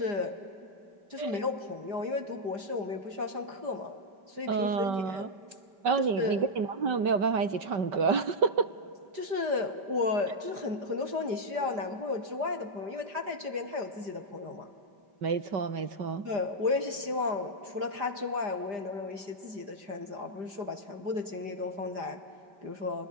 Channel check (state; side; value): late; left; 5.0 ms